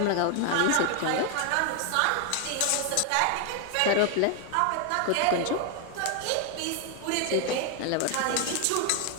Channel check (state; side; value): different; both; correlation 0.01